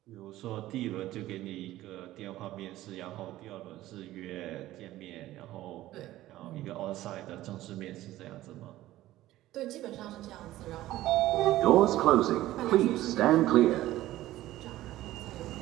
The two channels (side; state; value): left; quieter; 15.4 dB